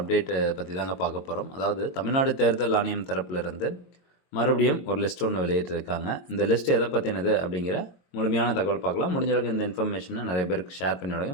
பற்றி தாங்க பார்க்க போகிறோம். அதாவது தமிழ்நாடு தேர்தல் ஆணையம் தரப்பிலிருந்து மறுபடியும் ஒரு லிஸ்ட் ஒன்று வெளியிட்டிருக்காங்க. இந்த லிஸ்ட் எதை பற்றினது அப்படிங்கிற முழுமையான தகவல் பார்க்கலாம். முடிஞ்ச அளவுக்கு இந்த இன்ஃபர்மேஷனை நிறைய பேருக்கு ஷேர் பண்ணி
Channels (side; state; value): right; late; 22 ms